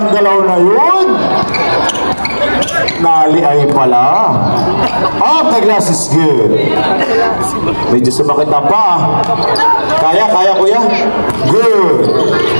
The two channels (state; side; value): inverted; both; correlation -1.00